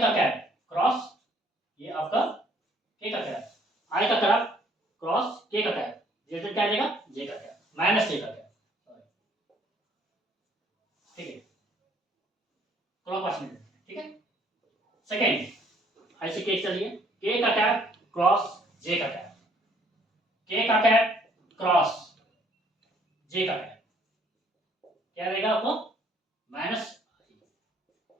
का कैप क्रॉस ये आपका के का कैप, आई का कैप क्रॉस के का कैप, रिजल्ट क्या देगा, जे का कैप माइनस के का कैप, ठीक है, क्लॉकवाइज में, ठीक है। सेकेंड ऐसे केस चलिए के का कैप क्रॉस जे का कैप, के का कैप क्रॉस जे का कैप क्या देगा आपको, माइनस,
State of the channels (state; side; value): normal; both; correlation 0.63